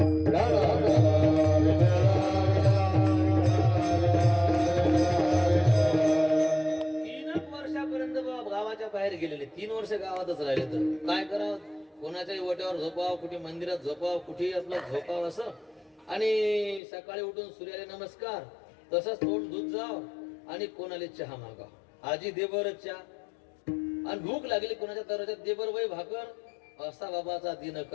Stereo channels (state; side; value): drops out; right; at 16.8 s